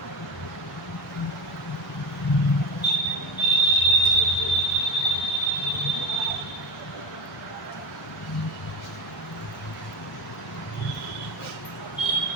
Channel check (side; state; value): both; normal; correlation 0.20